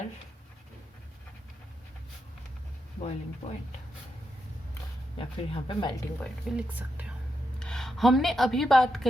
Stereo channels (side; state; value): both; normal; correlation 0.84